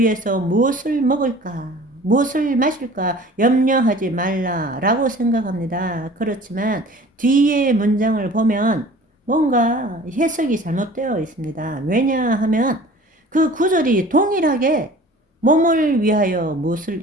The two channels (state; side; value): normal; both; correlation 0.45